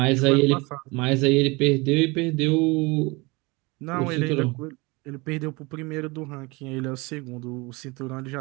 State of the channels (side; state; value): left; quieter; 25.6 dB